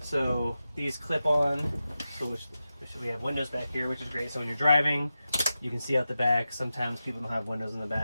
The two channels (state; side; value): inverted; both; correlation -0.92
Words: So these clip on, which we have windows back here, which is great. So when you're driving, you can see out the back. Sometimes people don't have windows in the